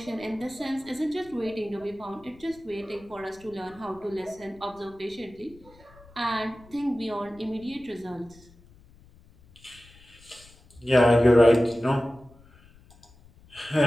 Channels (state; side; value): noise; left; rumble, 25 dB below the sound